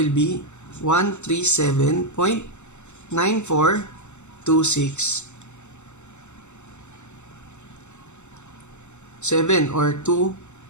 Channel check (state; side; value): late; right; 0.83 ms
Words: be 137.9426 or 26